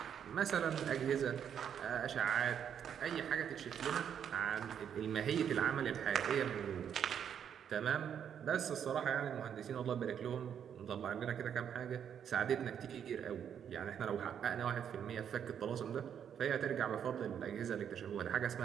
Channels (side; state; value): left; quieter; 8.5 dB